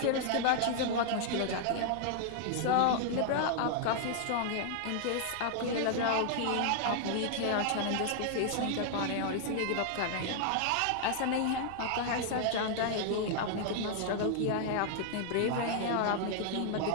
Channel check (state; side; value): different; both; correlation 0.00